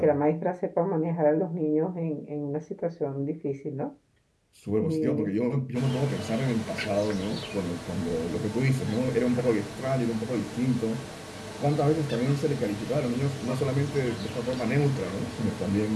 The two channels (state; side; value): identical; both; correlation 1.00